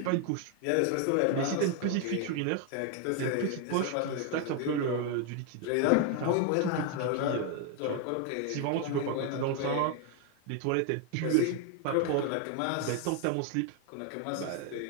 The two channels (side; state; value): both; different; correlation 0.01